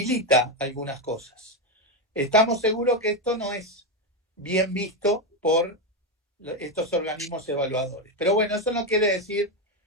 algunas cosas. Estamos seguros que esto no es bien visto por estos organismos evaluadores. Pero bueno, eso no quiere decir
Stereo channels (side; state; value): both; normal; correlation 0.09